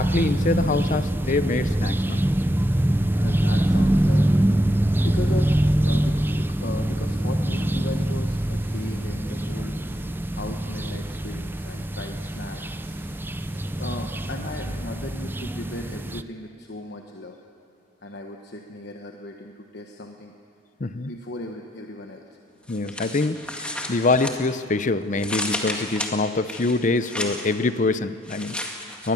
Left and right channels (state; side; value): normal; both; correlation 0.74